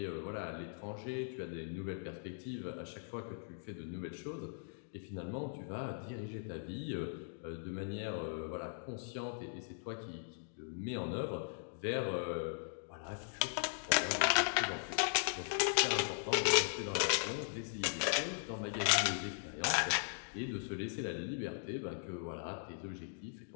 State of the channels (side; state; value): right; silent; digital silence